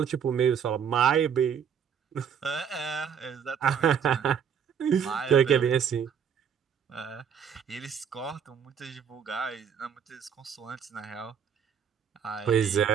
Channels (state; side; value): quieter; left; 7.6 dB